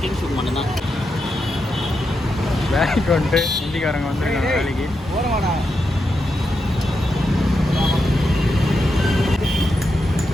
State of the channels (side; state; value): both; normal; correlation 0.86